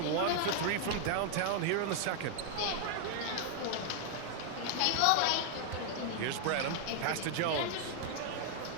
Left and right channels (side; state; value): both; different; correlation 0.00